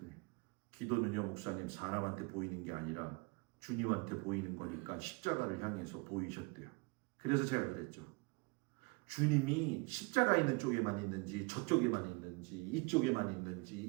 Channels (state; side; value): quieter; left; 29.5 dB